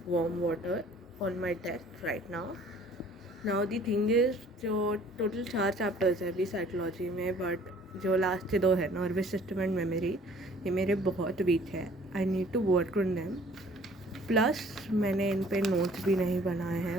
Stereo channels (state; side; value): normal; both; correlation 0.54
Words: warm water on my desk right now. Now the thing is, जो total 4 chapters है अभी psychology में, but जो last के 2 है nervous system and memory, ये मेरे बहुत वीक है. I need to work on them. Plus मैंने इन पे नोट्स भी नहीं बनाए हैं.